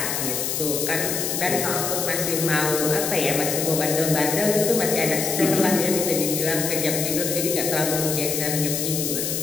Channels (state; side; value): noise; left; hiss, 1 dB below the sound